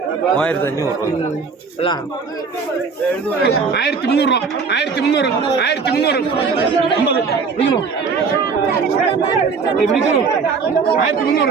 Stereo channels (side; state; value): left; quieter; 5.1 dB